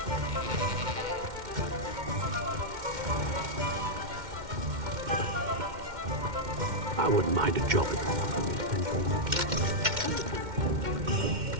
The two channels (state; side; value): late; left; 2.1 ms